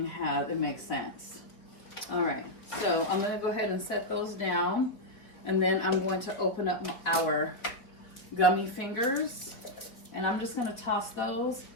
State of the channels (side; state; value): right; late; 4.2 ms